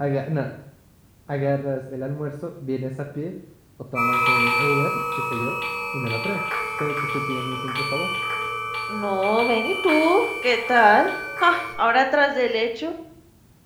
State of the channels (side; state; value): both; identical; correlation 1.00